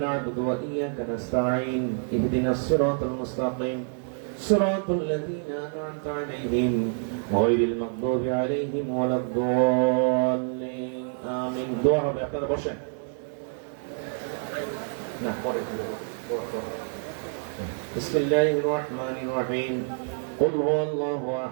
نعبد وإياك نستعين اهدنا الصراط المستقيم صراط الذين أنعمت عليهم غير المغضوب عليهم ولا الضالين آمين দোয়া হবে আপনারা বসেন না পরে দোয়া بسم الله الرحمن الرحيم قل هو الله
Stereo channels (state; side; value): silent; left; 59 dB below the other